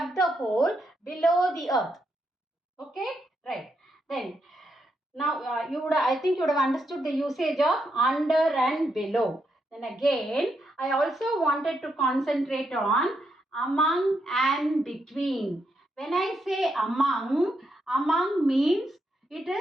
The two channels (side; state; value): both; normal; correlation 0.81